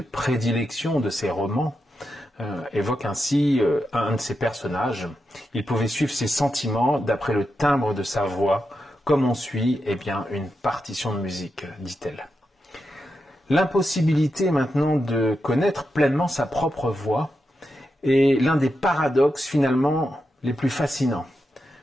prédilection de ses romans, évoque ainsi un de ses personnages. Il pouvait suivre ses sentiments d'après le timbre de sa voix, comme on suit une partition de musique, dit-elle. L'impossibilité maintenant de connaître pleinement sa propre voix est l'un des paradoxes finalement les plus fascinants.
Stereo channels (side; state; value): both; normal; correlation 0.87